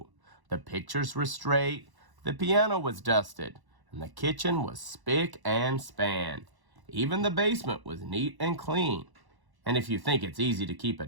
The pictures were straight, the piano was dusted, and the kitchen was spick and span. Even the basement was neat and clean. And if you think it's easy to keep a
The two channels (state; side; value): late; left; 1.1 ms